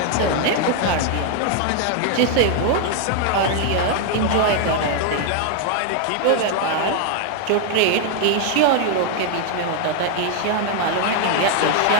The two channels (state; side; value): different; both; correlation 0.00